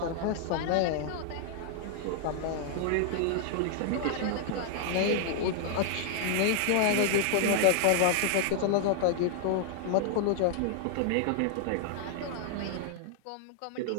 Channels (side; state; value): both; different; correlation -0.01